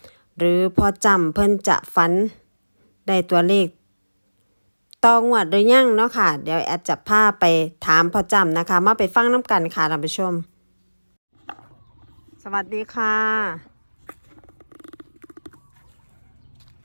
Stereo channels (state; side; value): inverted; both; correlation -1.00